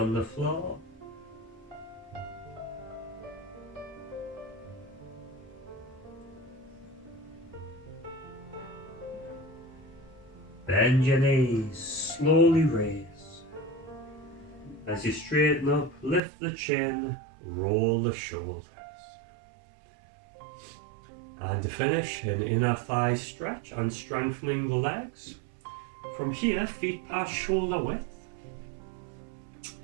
the floor. Bend your knees, slowly raise. As you straighten up, lift the chin, roll the shoulders. And to finish, an inner thigh stretch and strengthening the legs. From here, feet past shoulder width.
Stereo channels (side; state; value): left; drops out; at 16.2 s